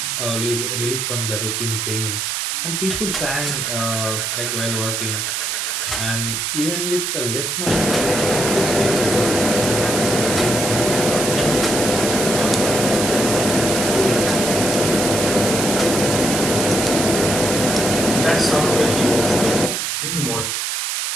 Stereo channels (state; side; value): noise; right; hiss, 1 dB below the sound